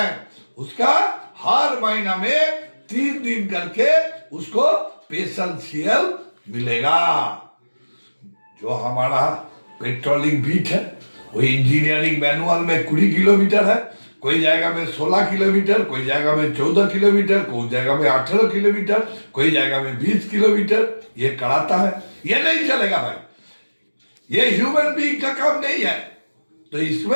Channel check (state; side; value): inverted; both; correlation -1.00